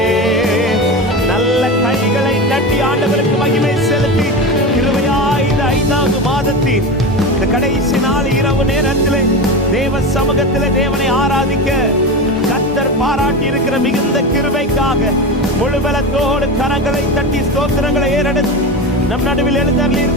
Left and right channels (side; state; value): both; normal; correlation 0.23